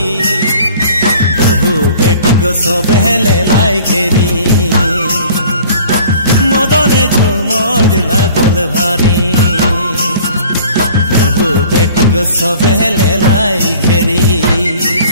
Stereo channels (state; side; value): inverted; both; correlation -0.49